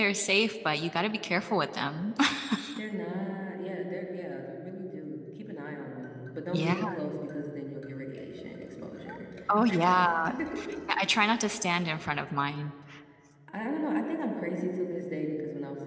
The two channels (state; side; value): identical; both; correlation 1.00